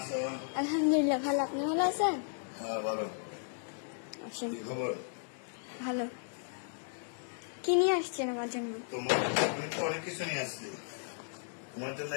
আলহামদুলিল্লাহ ভালো, আপনি ভালো আছেন? হ্যাঁ ভালো। আসেন। কি খবর? ভালো। কি নিয়ে আসছেন আমার জন্য? তোমার আমি তো অনেক কিছু নিয়ে আসছি তোমার জন্য।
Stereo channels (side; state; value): right; silent; digital silence